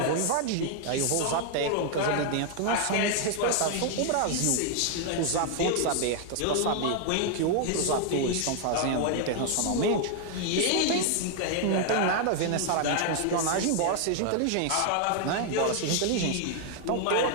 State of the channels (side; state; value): both; different; correlation 0.00